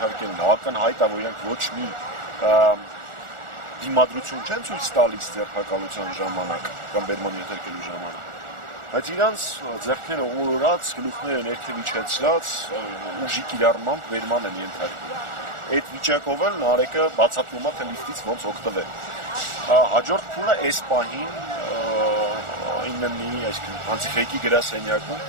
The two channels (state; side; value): late; left; 1.4 ms